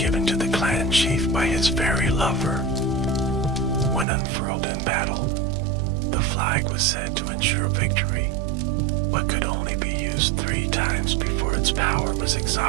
to the clan chief by his fairy lover. When unfurled in battle, the flag was said to ensure victory, but could only be used 3 times before its power was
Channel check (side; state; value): left; drops out; at 4.0 s